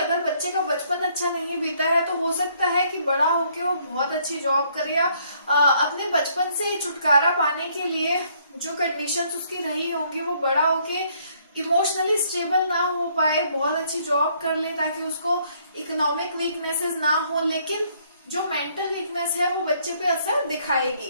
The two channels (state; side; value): inverted; both; correlation -0.67